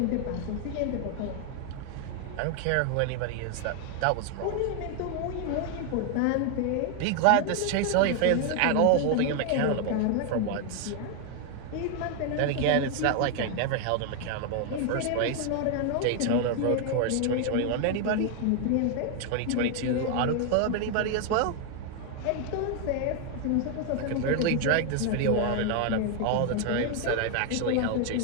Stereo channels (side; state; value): both; different; correlation 0.00